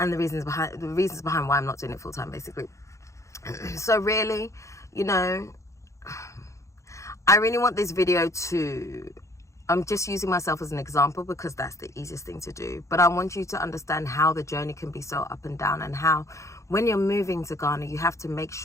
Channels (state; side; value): late; right; 0.15 ms